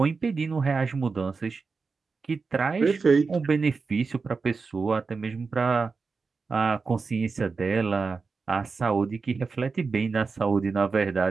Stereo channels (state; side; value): quieter; left; 4.6 dB